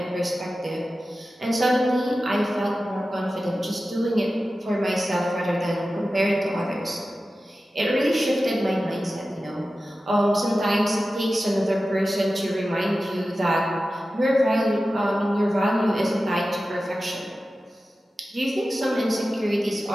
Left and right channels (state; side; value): normal; both; correlation 0.94